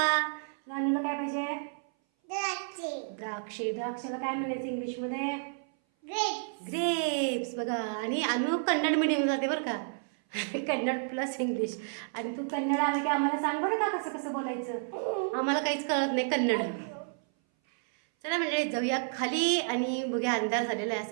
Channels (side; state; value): left; silent; 57 dB below the other